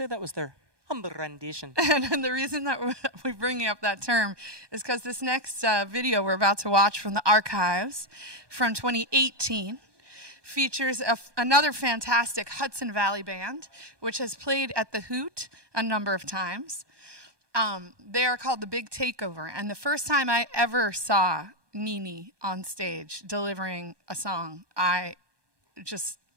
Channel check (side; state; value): left; late; 1.2 ms